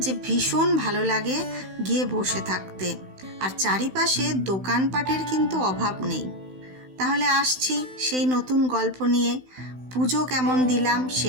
ভীষণ ভালো লাগে গিয়ে বসে থাকতে। আর চারিপাশে দোকানপাটের কিন্তু অভাব নেই। তাহলে আসছি সেই নতুন গল্প নিয়ে। পুজো কেমন দিলাম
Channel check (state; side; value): late; left; 16 ms